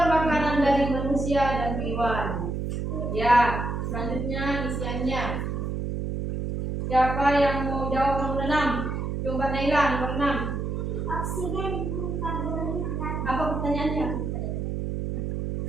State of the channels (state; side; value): noise; right; hum, 3 dB below the sound